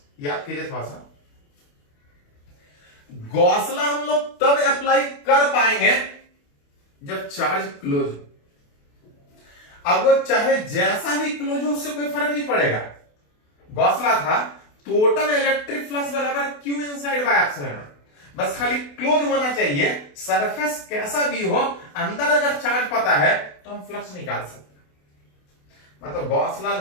याद कीजिए थोड़ा सा, गॉस लॉ हम लोग तब अप्लाई कर पाएंगे जब चार्ज क्लोज हो। अब वो चाहे जैसा भी क्लोज हो, उससे कोई फर्क नहीं पड़ेगा। गॉस लॉ था टोटल इलेक्ट्रिक फ्लक्स बराबर Q इनसाइड बाय एप्सिलॉन। बस खाली क्लोज होना चाहिए, सरफेस कैसा भी हो, अंदर अगर चार्ज पता है तो हम फ्लक्स निकाल सकते हैं। मतलब गॉस लॉ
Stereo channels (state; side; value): late; right; 28 ms